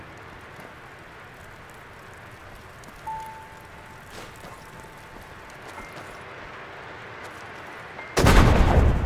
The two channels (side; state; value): both; identical; correlation 1.00